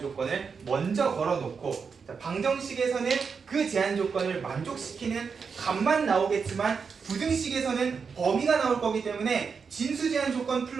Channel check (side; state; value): left; quieter; 5.7 dB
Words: 조건을 먼저 걸어놓고, 자, 방정식에서는 그 제한 조건을 만족시키는 값만 나오겠지만 부등식에서는 범위가 나올 거기 때문에 진수 제한 조건